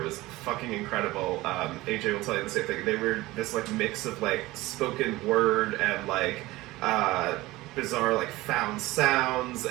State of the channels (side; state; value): left; quieter; 19.0 dB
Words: was fucking incredible. AJ will tell you the same thing. They were this like mix of like spoken word and like bizarre like found sounds,